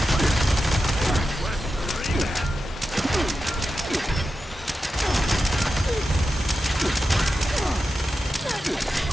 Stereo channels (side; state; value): both; normal; correlation 0.91